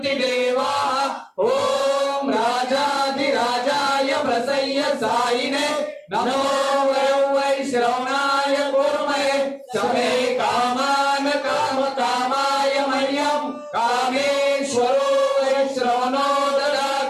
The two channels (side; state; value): both; identical; correlation 1.00